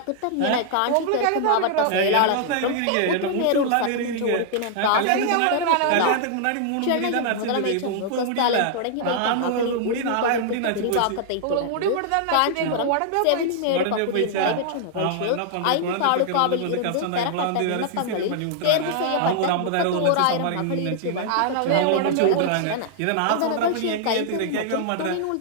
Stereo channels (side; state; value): both; different; correlation -0.01